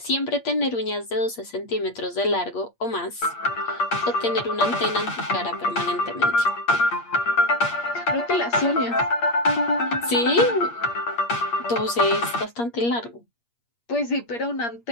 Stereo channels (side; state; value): right; late; 8.5 ms